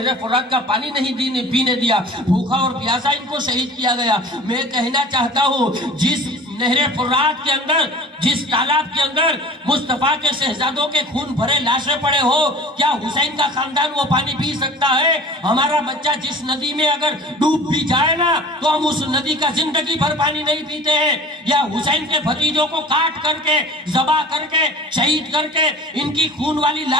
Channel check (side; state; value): both; normal; correlation 0.42